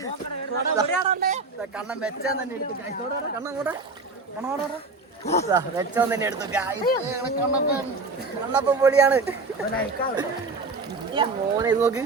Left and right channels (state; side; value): quieter; left; 3.8 dB